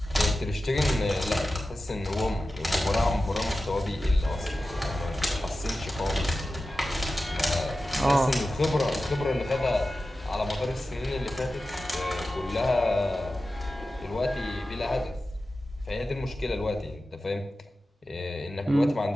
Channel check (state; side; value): normal; both; correlation 0.94